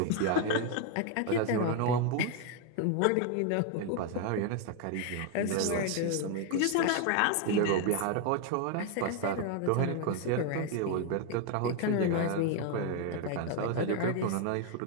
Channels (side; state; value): both; different; correlation 0.01